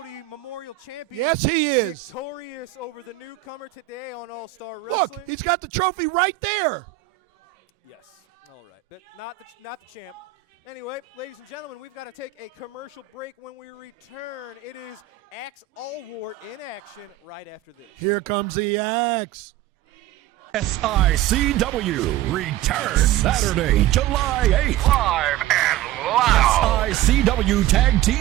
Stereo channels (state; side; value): quieter; left; 13.8 dB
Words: Memorial champion. Yes, he is. Victorious over the newcomer today on All-Star Wrestling. Look, he's got the trophy right there. Yes. All right. But not the champ. Anyway, ladies and gentlemen, we've got to take a commercial break. When we return, it is Axe Allwart in action right after this. Here comes the axe. SICW returns Saturday, July 8th. Live and loud. SICW Tag